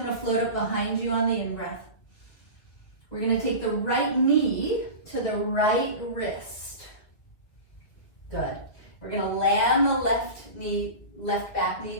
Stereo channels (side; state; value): right; late; 1.9 ms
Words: to float up behind you on the in-breath. We're going to take the right knee to the right wrist. Good. We're going to land the left back